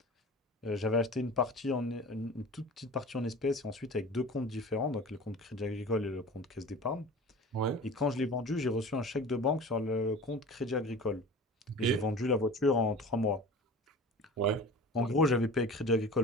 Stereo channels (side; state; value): both; normal; correlation 0.38